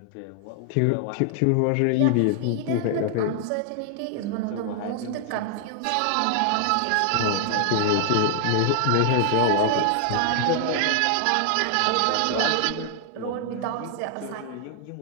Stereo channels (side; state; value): both; different; correlation 0.00